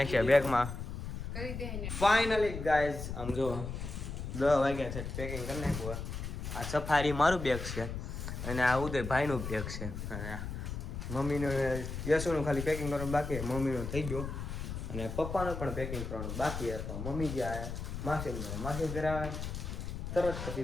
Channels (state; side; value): noise; left; rumble, 6 dB below the sound